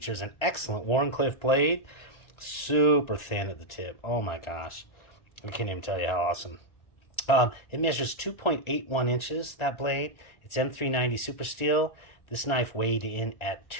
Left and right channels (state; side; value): late; right; 1.4 ms